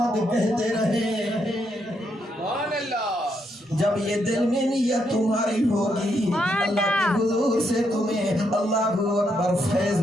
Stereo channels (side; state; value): both; normal; correlation 0.78